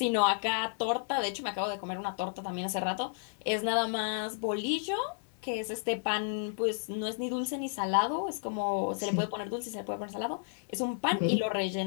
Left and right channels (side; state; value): right; silent; digital silence